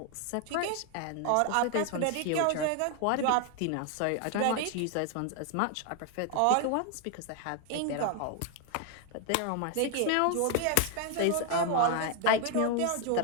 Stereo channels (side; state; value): both; different; correlation 0.00